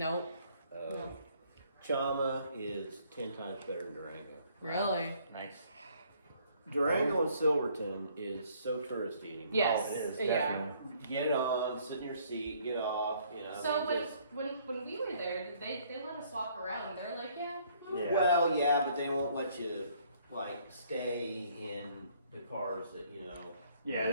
No. Chama is 10 times better than Durango. Really? Nice. Durango and Silverton is so touristy anymore. Yes. Oh, it is, Yeah. definitely. Get it on, sit in your seat, get off, you know. So I mean, just- when we were there, they let us walk around. They're like, yeah. Yeah. Well, yeah, but they won't let you, like, stay in the cars that, you know. Yeah,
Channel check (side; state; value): both; inverted; correlation -0.63